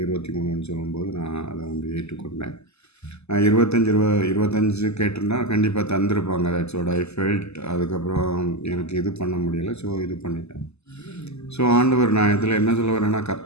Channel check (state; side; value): late; right; 0.80 ms